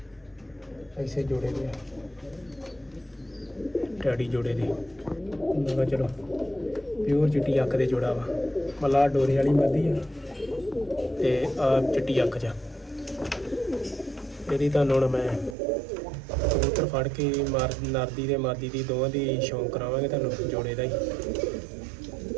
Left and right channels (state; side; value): drops out; left; at 15.6 s